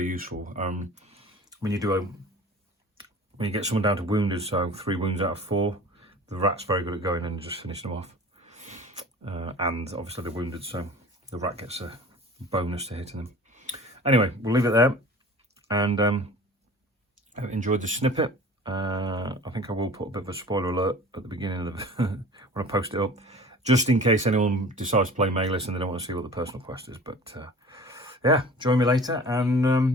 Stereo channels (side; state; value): both; normal; correlation 0.42